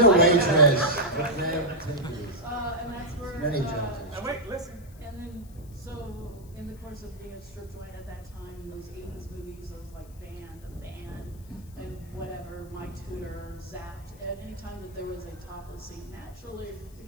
waitress. But damn, take it easy. And that's where. Many jobs. Now wait, listen. And then, so in the course of being a strip joint at that time, in those 80s movies, those like The Van, and whatever, My Tutor, Zapped, at any time that there was a topless scene, naturally, you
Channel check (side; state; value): left; noise; hiss, 26 dB below the sound